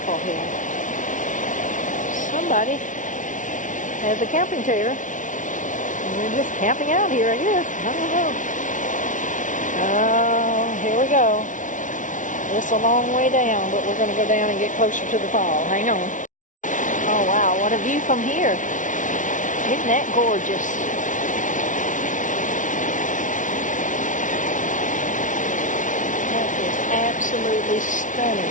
here. Somebody has a camping chair and they're just camping out here, I guess. I don't know. Oh, here we go. It's a long way down, but we're going to go down and get closer to the fall. Hang on. Oh, wow. What a view from here. Isn't that gorgeous? That is absolutely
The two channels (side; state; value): right; late; 0.37 ms